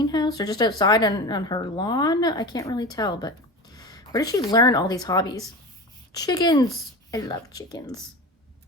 or just outside on her lawn? I can't really tell, but where did she learn all these hobbies? Chickens. I love chickens.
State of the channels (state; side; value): normal; both; correlation 0.29